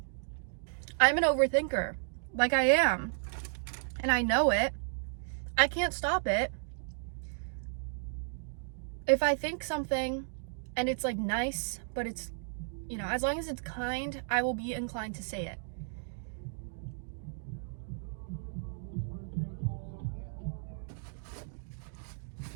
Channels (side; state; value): left; silent; digital silence